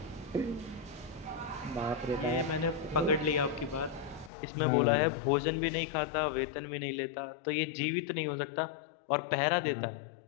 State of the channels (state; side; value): drops out; right; at 4.3 s